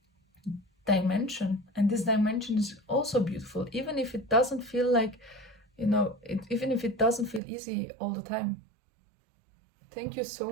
dimension, and this dimension is also beautiful, even if it doesn't feel like, even if it doesn't feel easy all the time. Thank you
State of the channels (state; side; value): drops out; left; at 7.4 s